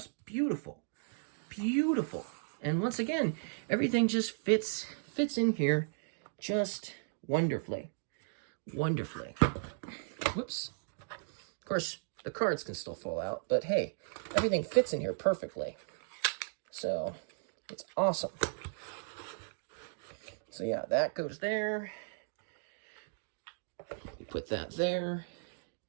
beautiful. Beautiful. And once again, everything just fits in here just wonderfully. Wonderfully. Whoops. Of course, the cards can still fall out, but hey, everything fits in here perfectly. So, it's awesome. So yeah, that goes there. We put that there.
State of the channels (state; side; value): silent; left; digital silence